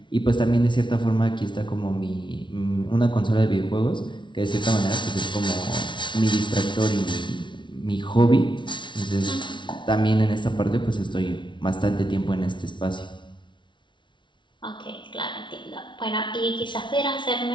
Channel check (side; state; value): right; late; 0.24 ms